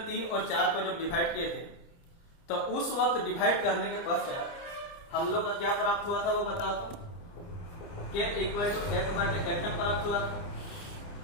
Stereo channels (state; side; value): late; right; 30 ms